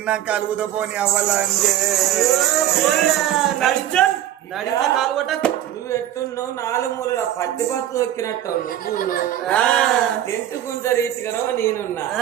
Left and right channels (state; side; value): quieter; left; 11.9 dB